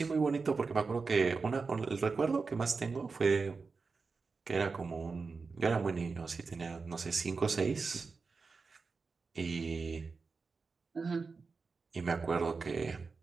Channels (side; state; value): left; quieter; 4.5 dB